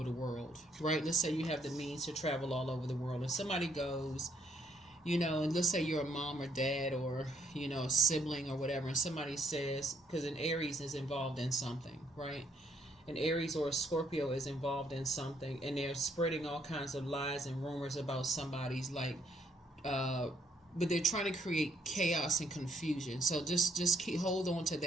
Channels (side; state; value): both; normal; correlation 0.70